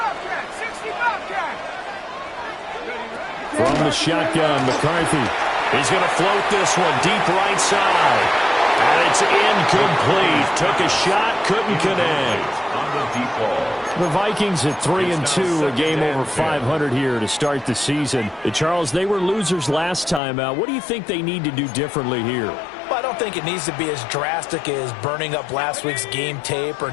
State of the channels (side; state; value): right; drops out; at 20.2 s